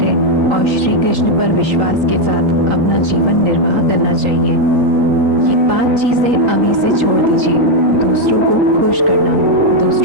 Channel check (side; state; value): left; late; 3.9 ms